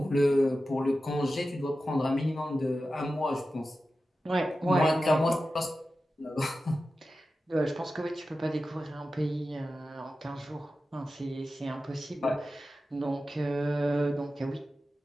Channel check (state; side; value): normal; both; correlation 0.93